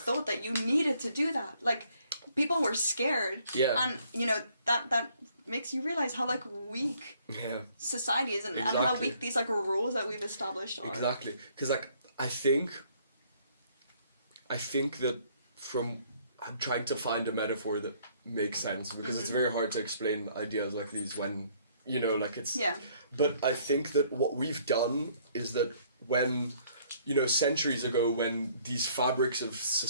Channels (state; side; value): inverted; both; correlation -0.63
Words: that you needed to do that. People were scared. Yeah. And that makes you realize how weak society is, and how weak these rules that we've established are. Exactly. Because I think that I'm trying to find a metaphor that makes sense, because it's very hard to explain ideas like these when it's. Yeah. But I think that what we've done is that when centuries ago, when these fabrics of